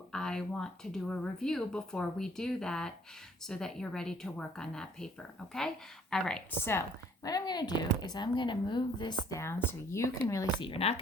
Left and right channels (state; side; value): normal; both; correlation 0.60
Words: I want to do a review before we do that so that you're ready to work on that paper, okay? All right, so what I'm going to do is I'm going to move this down so you can really see. You're not